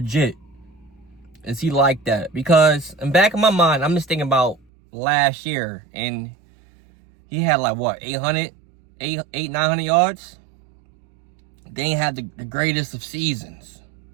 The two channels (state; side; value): drops out; left; at 4.6 s